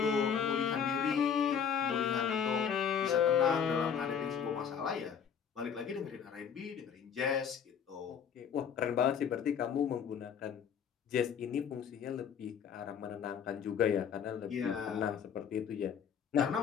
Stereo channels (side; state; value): right; quieter; 7.5 dB